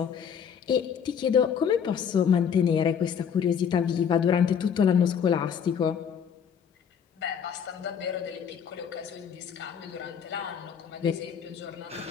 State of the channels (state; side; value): quieter; right; 7.5 dB